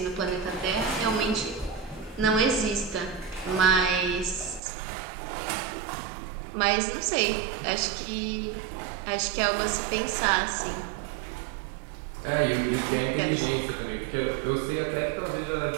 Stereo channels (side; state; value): left; drops out; at 4.6 s